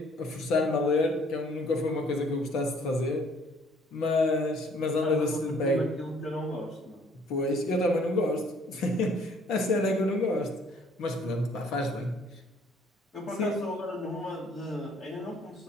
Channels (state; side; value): normal; both; correlation 0.60